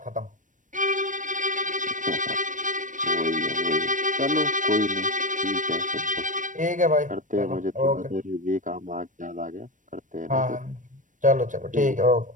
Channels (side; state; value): left; late; 0.37 ms